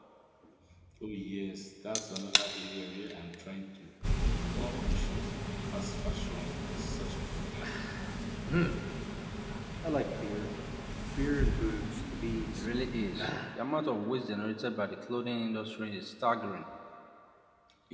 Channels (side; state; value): both; identical; correlation 1.00